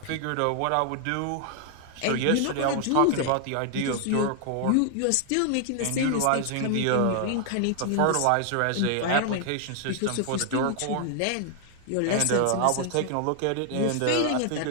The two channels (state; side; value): different; both; correlation 0.00